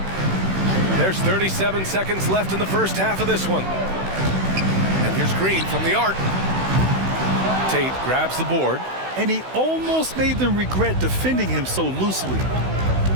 There's 37 seconds left in the first half of this one. And here's Green from the arc. Tate grabs the board. And he almost made them regret defending him so loosely.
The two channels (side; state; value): left; late; 16 ms